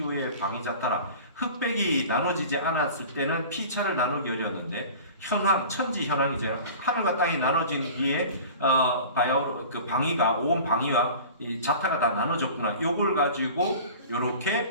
방위자타라. 흑백이 나눠지지 않았을 때는 피차를 나누기 어려웠는데 현황 천지 현황이죠. 하늘과 땅이 나눠진 뒤에 바야흐로 그 방위가 온 방위와 이 자타가 다 나눠졌구나. 요걸 가지고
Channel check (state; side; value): inverted; both; correlation -0.40